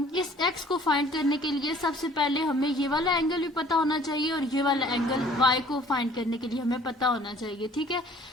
एक्स को फाइंड करने के लिए सबसे पहले हमें ये वाला एंगल भी पता होना चाहिए और ये वाला एंगल वाई को फाइंड करने के लिए हमें पता होना चाहिए। ठीक है,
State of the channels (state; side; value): normal; both; correlation 0.54